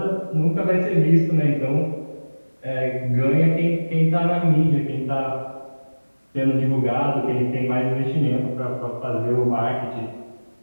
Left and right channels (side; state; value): both; inverted; correlation -1.00